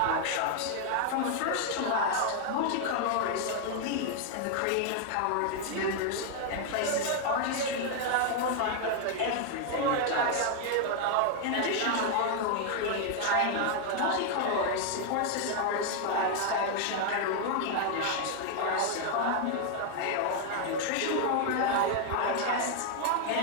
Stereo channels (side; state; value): both; different; correlation 0.00